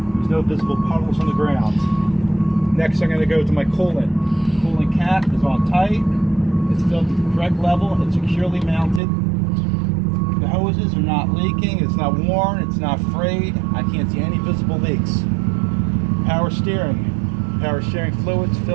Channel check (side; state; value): left; drops out; at 9.0 s